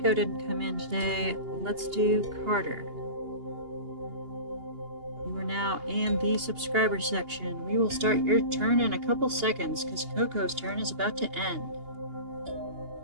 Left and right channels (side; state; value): left; late; 2.8 ms